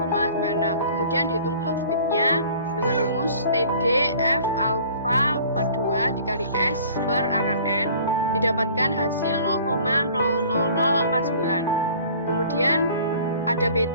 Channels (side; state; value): both; inverted; correlation -0.50